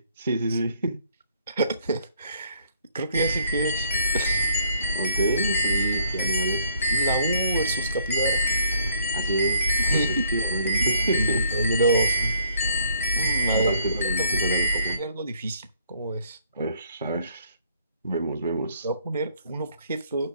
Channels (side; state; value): both; inverted; correlation -0.65